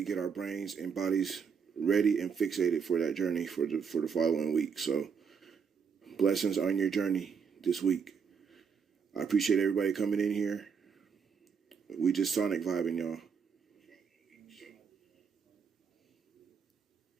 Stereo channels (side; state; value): left; quieter; 6.3 dB